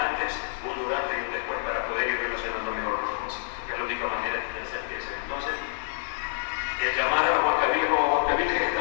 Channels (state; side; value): silent; right; 60 dB below the other